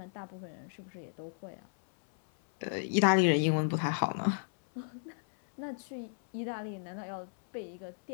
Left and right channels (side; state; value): right; silent; 55 dB below the other